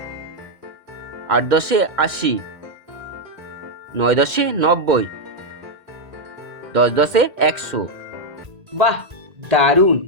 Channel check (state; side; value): late; left; 2.1 ms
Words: আট দশে 80, নয় দশে 90, দশ দশে 100। বাহ, দারুণ